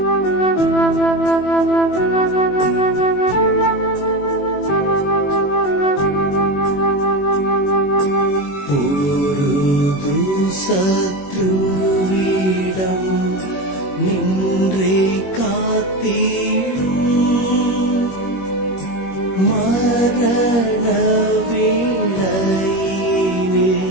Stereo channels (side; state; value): right; late; 21 ms